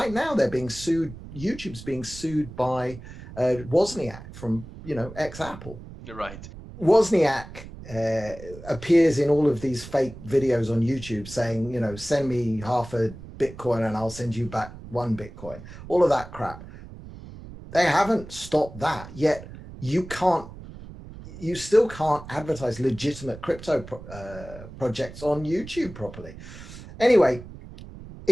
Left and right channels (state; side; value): noise; right; rumble, 15 dB below the sound